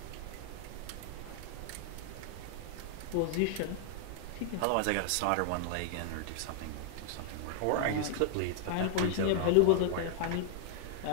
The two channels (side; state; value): both; different; correlation 0.00